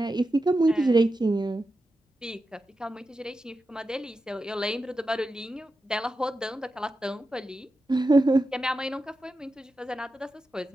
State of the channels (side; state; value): both; normal; correlation 0.90